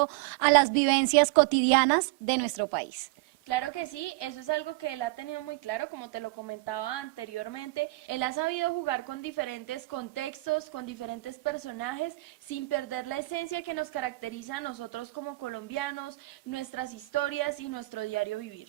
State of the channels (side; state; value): left; quieter; 22.3 dB